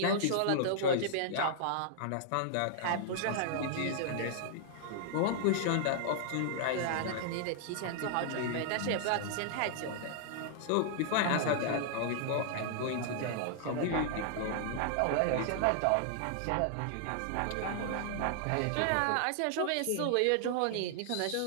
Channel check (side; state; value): both; different; correlation -0.01